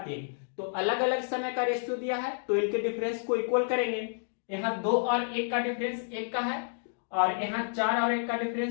तो अलग अलग समय का रेशियो दिया है, तो इनके डिफरेंस को इक्वल करेंगे। यहाँ 2 और 1 का डिफरेंस 1 का है, और यहाँ 4 और 1 का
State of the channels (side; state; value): right; silent; digital silence